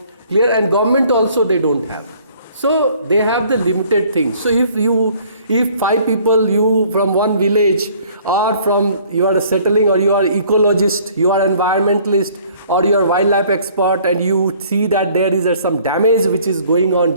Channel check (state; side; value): inverted; both; correlation -0.57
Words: clear? And government also they don't have. So they have the limited things. So if 5 people, you from one village, or from you are settling, or you are ecologist, you are environmentalist, or you are wildlife expert, and you see that there is some damage which is going on,